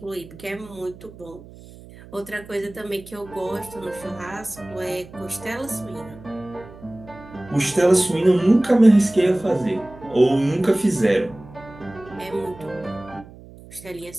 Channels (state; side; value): noise; right; hum, 19 dB below the sound